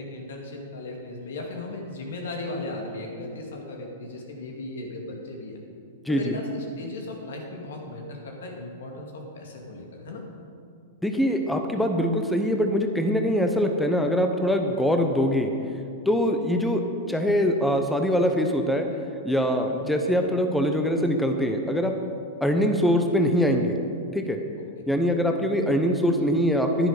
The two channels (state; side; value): normal; both; correlation 0.43